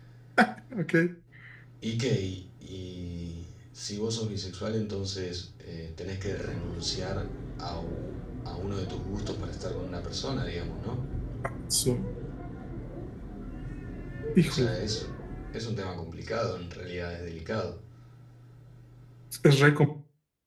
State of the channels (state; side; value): identical; both; correlation 1.00